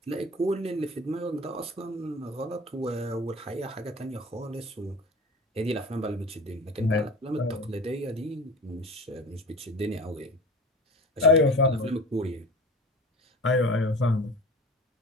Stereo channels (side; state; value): both; normal; correlation 0.37